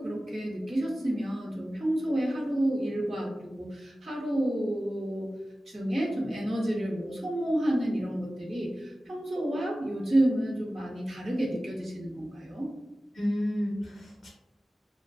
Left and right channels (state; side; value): normal; both; correlation 0.96